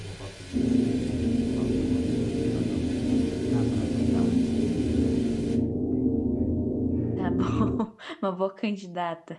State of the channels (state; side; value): identical; both; correlation 1.00